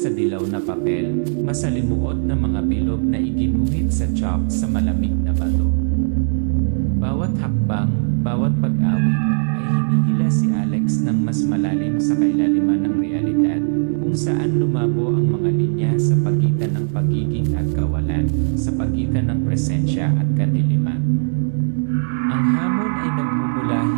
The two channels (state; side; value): silent; left; digital silence